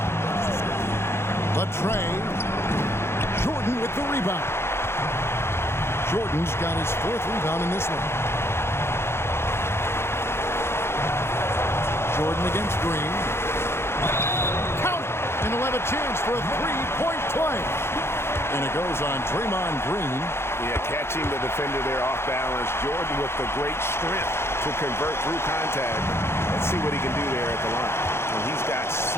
Latrey. Jordan with the rebound. Jordan's got his 4th rebound in this one. Jordan against Green. Count it, and he'll have a chance for a 3-point play. And it goes on Draymond Green. Yeah, catching the defender there off balance. Jordan with the great strength to convert through contact. Let's see what he can do there at the line. And he's got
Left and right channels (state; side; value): late; right; 0.12 ms